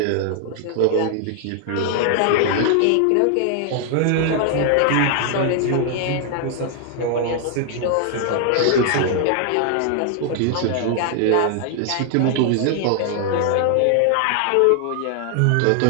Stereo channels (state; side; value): different; both; correlation 0.00